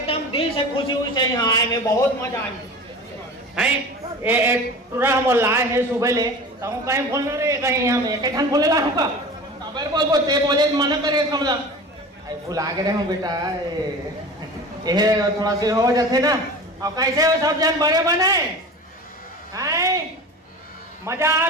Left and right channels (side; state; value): both; normal; correlation 0.35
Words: दिल से खुशी हुई से यहाँ आए में, बहुत मजा आई है। पूरा हम लाए हैं सुबह ले, तो हम कहीं बोलना रे, कहीं हम एक घंटे बोले ला होगा बोलते बोले मना करे समझा। भुला गए हूँ बेटा, ये थोड़ा सी हो जाते ना। और कैसे हो सब जन बड़े बने हैं, मजा